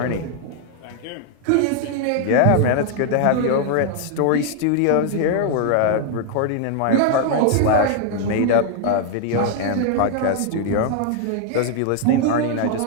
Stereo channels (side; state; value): both; different; correlation 0.00